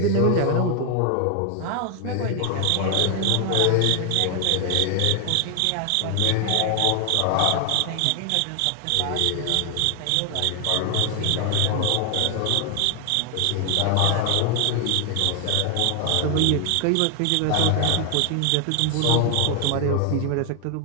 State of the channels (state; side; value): different; both; correlation 0.00